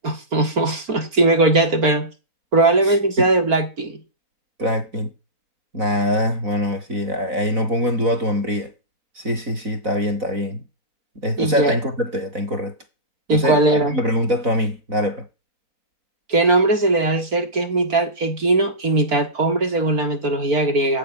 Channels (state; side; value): late; left; 4.4 ms